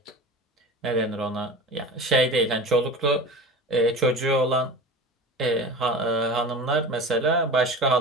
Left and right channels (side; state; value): both; normal; correlation 0.34